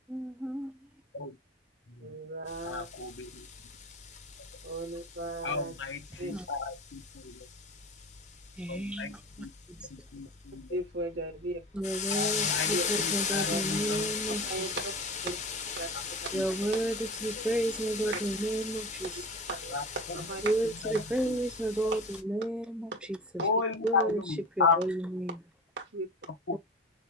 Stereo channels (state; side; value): normal; both; correlation 0.32